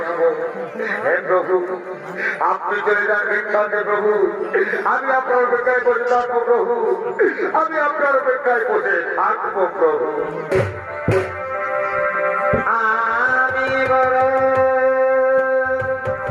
হে প্রভু, আপনি চলে যান ভিক্ষাতে প্রভু, আমি আপনার অপেক্ষায় বসে থাকবো প্রভু, আমি আপনার অপেক্ষায় বসে থাকবো প্রভু। আমি বড়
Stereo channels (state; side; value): identical; both; correlation 1.00